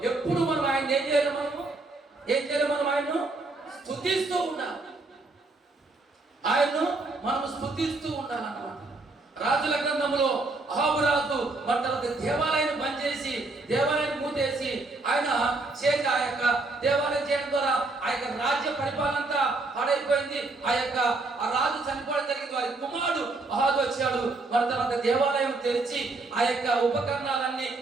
ఎప్పుడు మనం ఆయన ఏం చేయాలి? మనం ఆయన్ను స్తుతిస్తూ ఉండాలి. ఆయన్ను మనం స్తుతిస్తూ ఉండాలన్నమాట. రాజుల గ్రంథంలో అహాబు రాజు తర్వాత దేవాలయాన్ని బంద్ చేసి, దేవాలయాన్ని మూతేసి ఆయన చేసి ఆ యొక్క దేవాలయం చేయడం ద్వారా ఆ యొక్క రాజ్య పరిపాలన అంతా పాడైపోయింది. ఆ రాజు చనిపోవడం జరిగింది. వారి కుమారుడు అహాబు వచ్చాడు. మరి తర్వాత దేవాలయం తెరిచి ఆ యొక్క ఉపకరణాలన్నీ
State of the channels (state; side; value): quieter; left; 3.3 dB